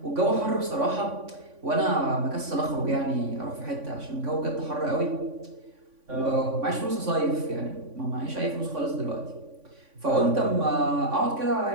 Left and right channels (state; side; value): late; left; 3.5 ms